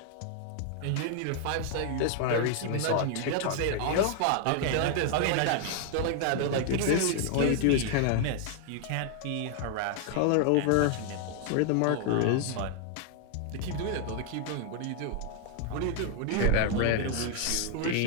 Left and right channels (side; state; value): both; different; correlation 0.00